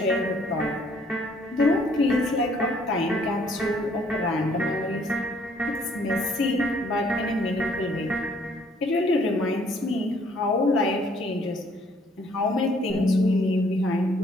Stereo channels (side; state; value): both; normal; correlation 0.63